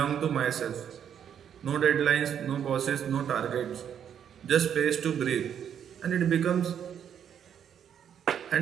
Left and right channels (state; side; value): quieter; left; 8.8 dB